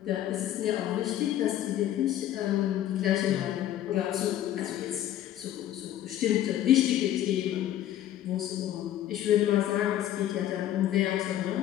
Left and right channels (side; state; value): right; quieter; 12.3 dB